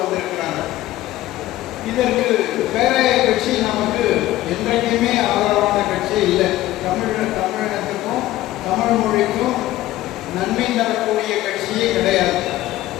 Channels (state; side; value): quieter; right; 15.6 dB